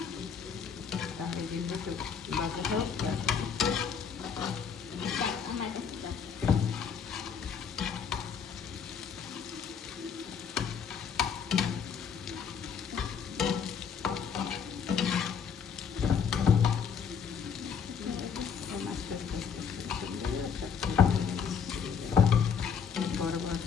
তাহলে দিলে একটু বাজে হোক। আমার কাছে দাও। বড় বড়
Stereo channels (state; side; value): quieter; right; 6.8 dB